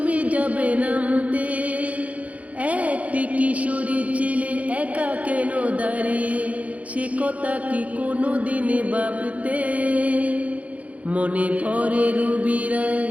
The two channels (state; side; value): late; left; 0.067 ms